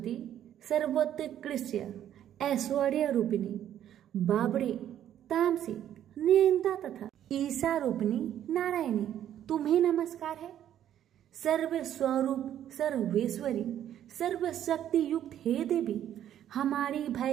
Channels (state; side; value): quieter; left; 10.9 dB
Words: सर्वोत्कृष्ट ऐश्वर्य रूपिणी, बाबड़ी, तामसी, नियंता तथा ईशा रूपिणी नारायणी तुम्हें नमस्कार है। सर्व स्वरूप, सर्वेश्वरी, सर्वशक्ति युक्त हे देवी हमारी